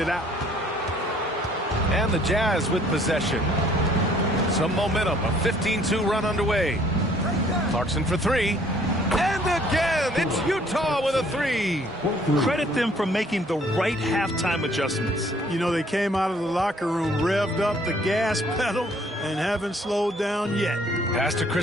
out. And the Jazz with possession. Some momentum, a 15-2 run underway. Clarkson for 3. And again, it's Utah with a 3. Credit them for making the right halftime adjustments. You know, they came out of the locker room, revved up the gas pedal, and haven't slowed down yet. Pass to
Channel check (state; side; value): normal; both; correlation 0.60